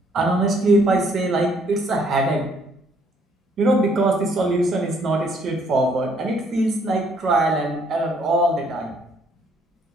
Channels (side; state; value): both; normal; correlation 0.66